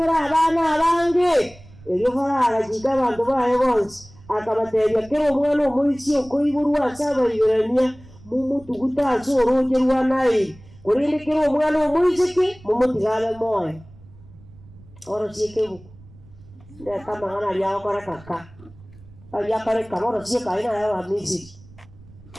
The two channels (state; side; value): noise; right; rumble, 22 dB below the sound